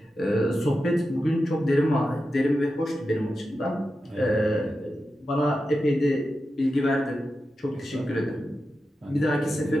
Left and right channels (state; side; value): normal; both; correlation 0.90